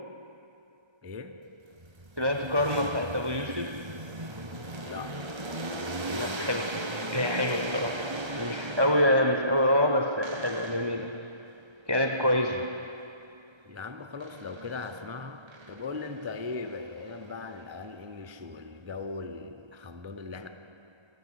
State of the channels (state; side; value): late; left; 1.3 ms